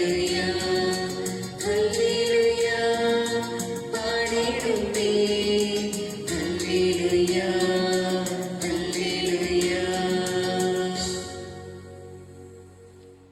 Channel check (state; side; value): identical; both; correlation 1.00